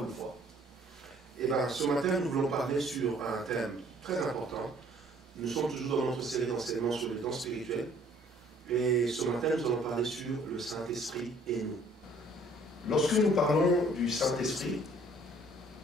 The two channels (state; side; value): normal; both; correlation 0.58